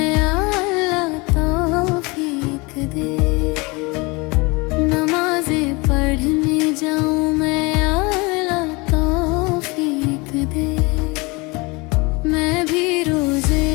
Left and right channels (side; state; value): right; quieter; 26.3 dB